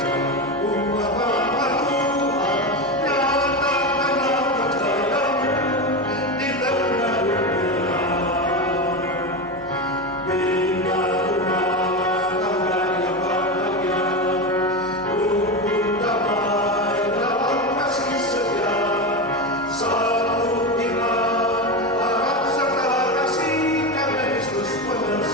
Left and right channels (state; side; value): normal; both; correlation 0.17